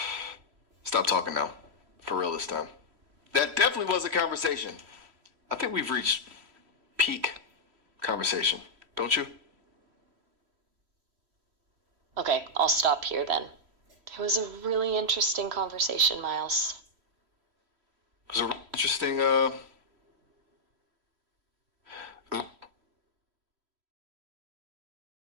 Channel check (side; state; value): left; late; 3.1 ms